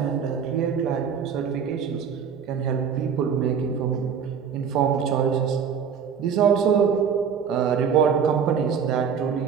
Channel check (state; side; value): quieter; left; 7.1 dB